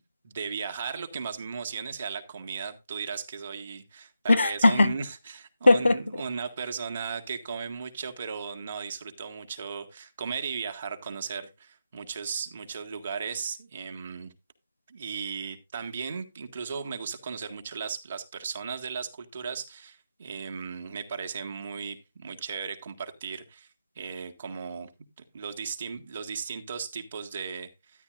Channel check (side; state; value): both; inverted; correlation -0.86